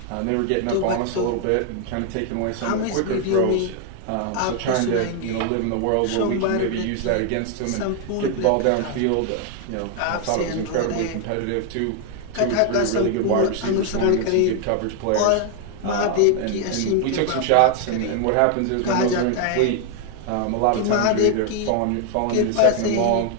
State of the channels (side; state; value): both; different; correlation 0.00